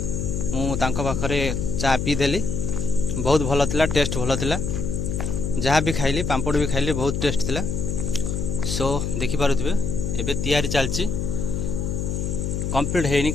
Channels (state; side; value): noise; left; hum, 1 dB below the sound